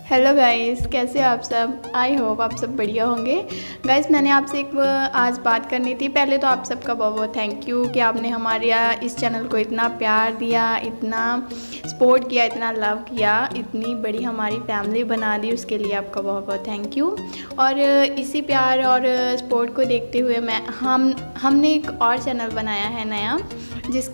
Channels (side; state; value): both; inverted; correlation -1.00